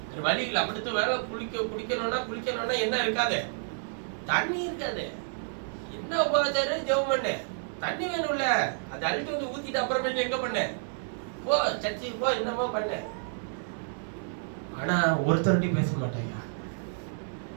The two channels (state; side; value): silent; left; digital silence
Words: வழி இல்லை. அடுத்த வேலை குளிக்கணும்னா என்ன இருக்காது, தண்ணி இருக்காது. என்ன உபாச்சாரு, ஜெபம் பண்ணு, தண்ணி வேணும்ல, அது அழுட்டு வந்து ஊத்திட்டு அப்புறமேட்டு எங்க பண்ண, போ சர்ச்சுக்கு போ, என்னமோ பண்ண. ஆனா ஒருத்தருட்டி பேச மாட்டேயா,